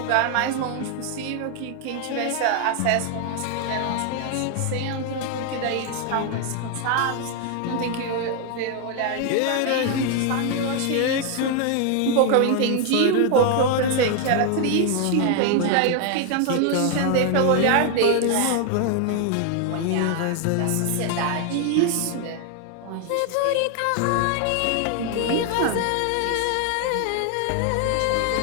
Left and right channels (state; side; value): different; both; correlation 0.00